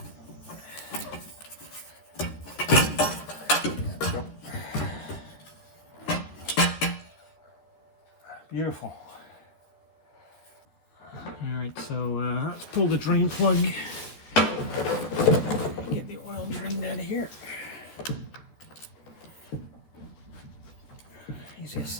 Beautiful. Alright, so let's pull the drain plug. Get the oil drained out of here. Easiest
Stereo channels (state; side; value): late; right; 13 ms